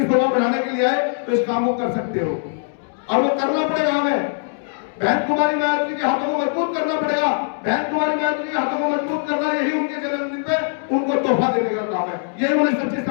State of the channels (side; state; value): right; silent; digital silence